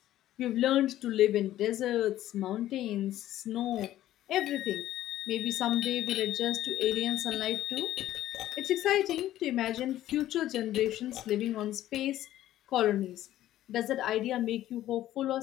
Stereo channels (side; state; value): right; quieter; 13.5 dB